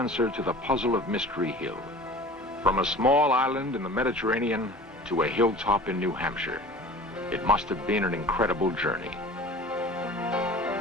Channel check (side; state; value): both; normal; correlation 0.41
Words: to the puzzle of Mystery Hill. From a small island in the Mediterranean to a hilltop in New Hampshire, it must have been an incredible journey.